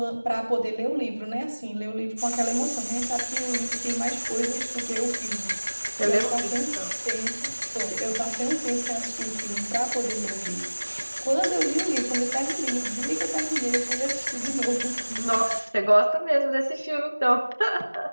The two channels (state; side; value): inverted; both; correlation -1.00